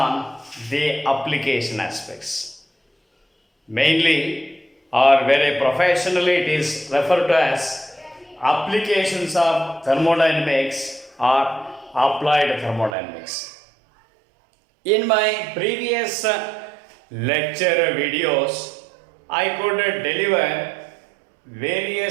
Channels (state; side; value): drops out; left; at 13.0 s